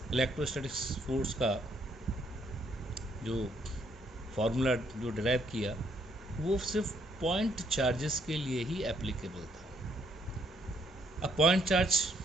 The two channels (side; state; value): both; normal; correlation 0.70